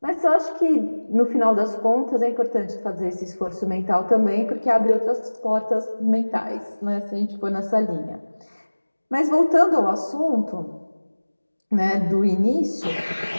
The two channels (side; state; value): both; inverted; correlation -1.00